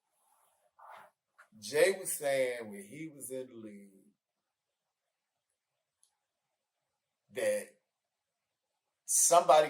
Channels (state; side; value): identical; both; correlation 1.00